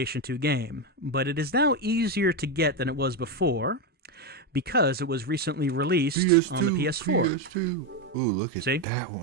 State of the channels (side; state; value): both; normal; correlation 0.09